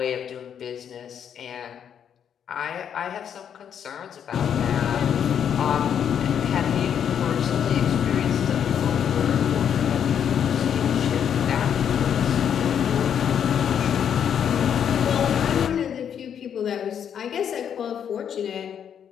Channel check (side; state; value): right; quieter; 8.5 dB